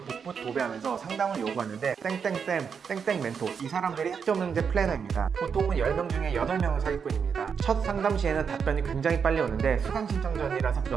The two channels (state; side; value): quieter; left; 6.5 dB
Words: 복붙 도배하면서 상담을 요구하는데 땡땡쌤, 땡땡 멘토 이 사람들이 학점능제 플래너입니다. 보통은 10명 중에 8명은 사기꾼입니다. 첫 상담 시에는 답변이 굉장히 빨리 오는데 수강 신청 전이라서